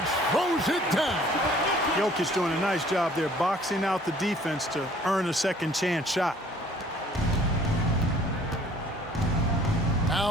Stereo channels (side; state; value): both; normal; correlation 0.55